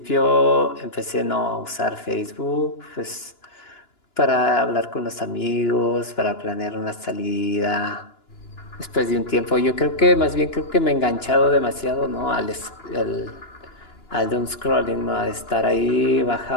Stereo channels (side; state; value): right; late; 2.9 ms